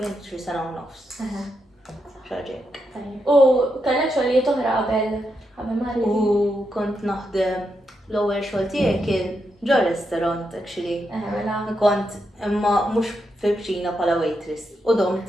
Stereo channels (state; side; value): normal; both; correlation 0.83